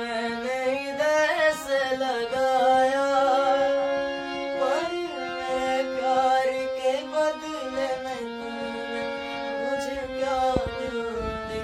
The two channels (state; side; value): identical; both; correlation 1.00